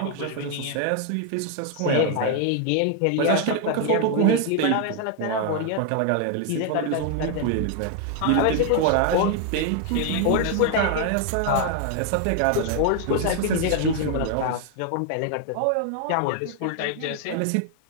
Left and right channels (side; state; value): both; different; correlation 0.00